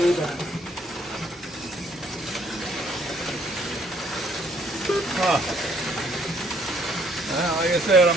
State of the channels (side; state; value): both; normal; correlation 0.65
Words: Huh. Well, like I said, I